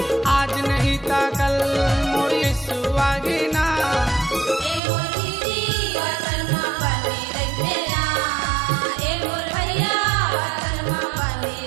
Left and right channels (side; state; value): left; drops out; at 4.8 s